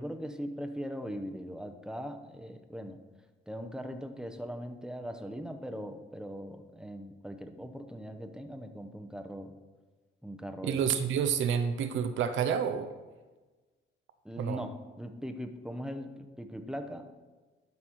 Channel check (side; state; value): left; quieter; 4.8 dB